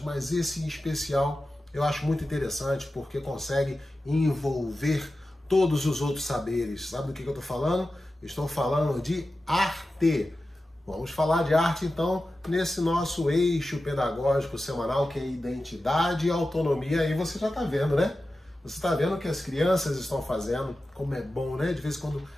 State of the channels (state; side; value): normal; both; correlation 0.93